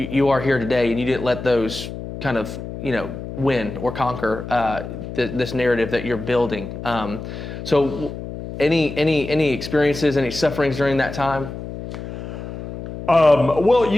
are here today, and you didn't let those kind of win or conquer this narrative that you're building. So any experiences, any sufferings during that time? Well,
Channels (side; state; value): left; noise; hum, 9 dB below the sound